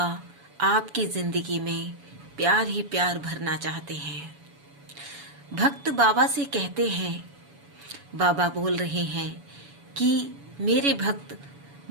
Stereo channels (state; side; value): late; left; 7.1 ms